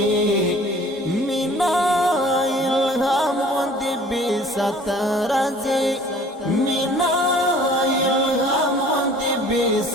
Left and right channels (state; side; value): normal; both; correlation 0.50